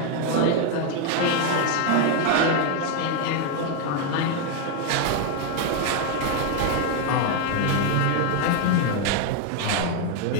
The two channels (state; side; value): different; both; correlation 0.01